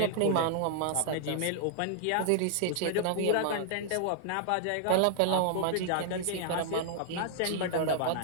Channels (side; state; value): both; different; correlation 0.00